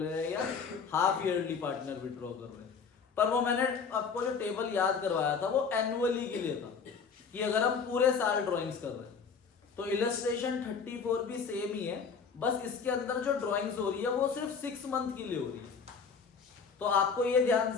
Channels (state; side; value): quieter; right; 5.7 dB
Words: हैं या हाफ ईयरली पार्टनर विड्रॉ कर रहे हैं, पर वो मैंने आपको जो टेबल याद करवाया था वो एनुअली के लिए था, कि अगर हम पूरे साल ड्राइंग्स कर रहे हैं। तो इलस्ट्रेशन 34 भी सेम ही है, बस इसके अंदर जो ड्राइंग्स हो रही है वो सिर्फ 6 मंथ के लिए हो रही है। तो आपको ये ध्यान